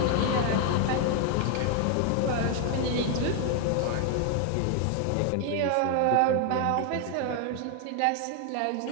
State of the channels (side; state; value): both; different; correlation 0.00